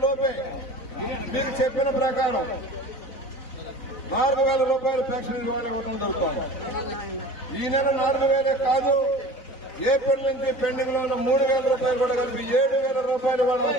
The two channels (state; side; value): late; right; 4.0 ms